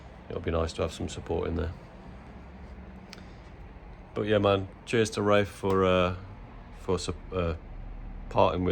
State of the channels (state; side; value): identical; both; correlation 1.00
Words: It'll be nice to have some support in there. But yeah, man, cheers to Rafe for parting